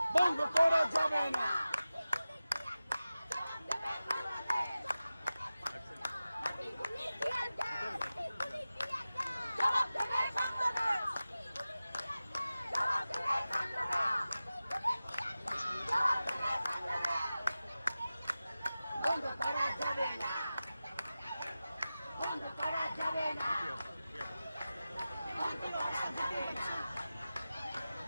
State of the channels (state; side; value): inverted; both; correlation -0.95